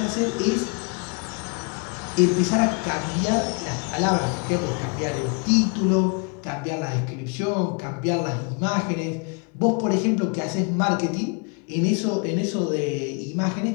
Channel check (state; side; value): quieter; right; 35.3 dB